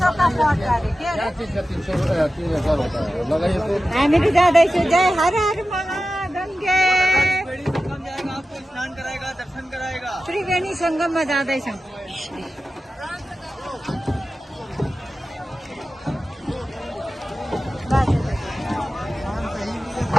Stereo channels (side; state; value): both; normal; correlation 0.93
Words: हामी त जाँदैछु। जय हर हर महागङ्गे। त्रिवेणी सङ्गममा जाँदैछौँ।